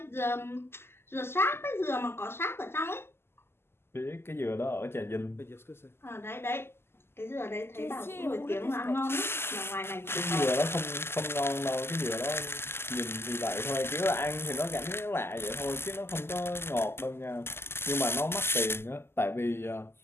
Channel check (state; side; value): late; right; 0.12 ms